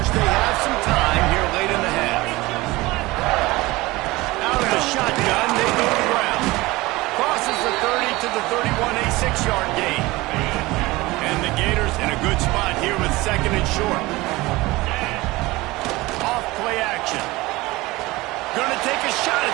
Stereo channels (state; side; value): quieter; left; 20.6 dB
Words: They have some time here late in the half. Out of the shotgun, they go to the ground. Crosses the 30 to the 31, a 6-yard gain. And the Gators in a good spot here with second and short. Off play action. Gonna take a shot